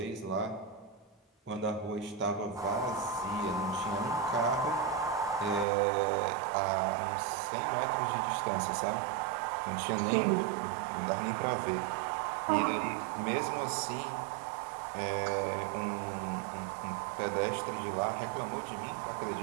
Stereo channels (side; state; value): left; drops out; at 5.7 s